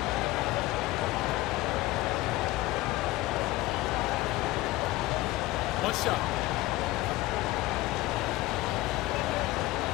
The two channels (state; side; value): quieter; right; 18.4 dB